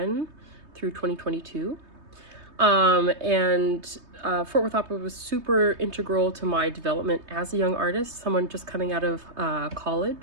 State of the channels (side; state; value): left; late; 3.2 ms